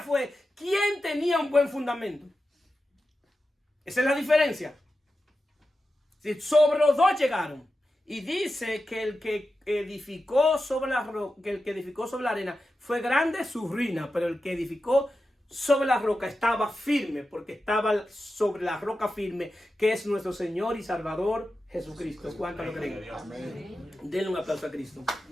quién tenía un buen fundamento. Esa es la diferencia. Sobre los dos llegaron. Y dice que el que edificó sobre la roca, que el que edificó sobre la arena fue grande su ruina, pero el que edificó sobre la roca estaba firme, porque estaba sobre la roca firme, que es nuestro Señor y Salvador Jesucristo. ¿Cuántos lo creen? Amén. Denle un aplauso a Cristo.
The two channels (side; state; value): both; normal; correlation 0.91